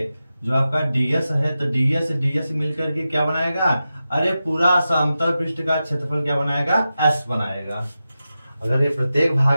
जो आपका डीएस है, तो डीएस डीएस मिल करके क्या बनाएगा, अरे पूरा समतल पृष्ठ का क्षेत्रफल क्या बनाएगा, एस बनाएगा। अगर ये प्रत्येक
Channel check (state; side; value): inverted; both; correlation -0.92